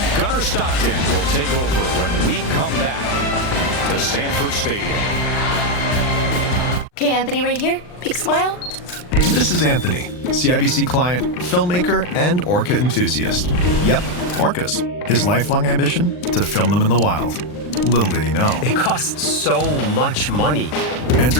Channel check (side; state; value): right; late; 39 ms